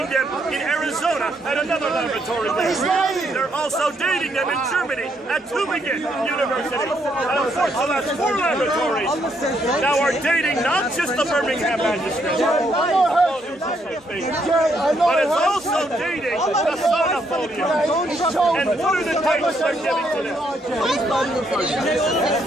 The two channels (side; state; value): both; normal; correlation 0.74